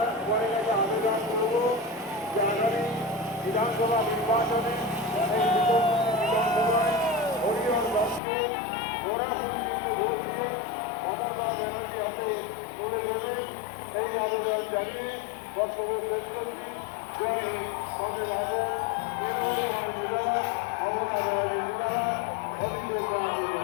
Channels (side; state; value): right; drops out; at 8.2 s